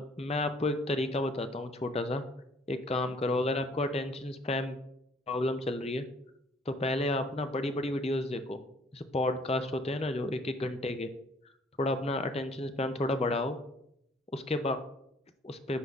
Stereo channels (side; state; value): both; normal; correlation 0.59